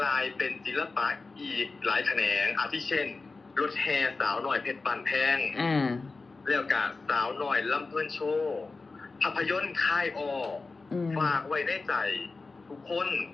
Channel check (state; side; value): quieter; right; 3.9 dB